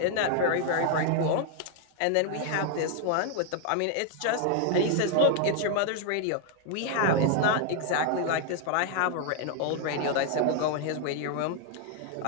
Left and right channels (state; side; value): different; both; correlation 0.00